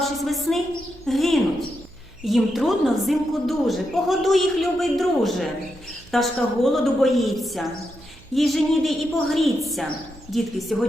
весни, гинуть. Їм трудно взимку дуже, погодуй їх, любий друже. Пташка голоду боїться, їй же ніде і погріться. Дітки,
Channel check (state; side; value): noise; right; hum, 23 dB below the sound